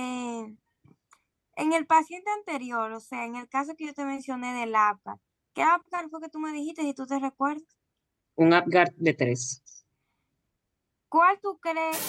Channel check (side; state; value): both; identical; correlation 1.00